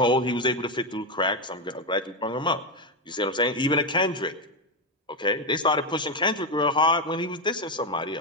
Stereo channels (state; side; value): normal; both; correlation 0.08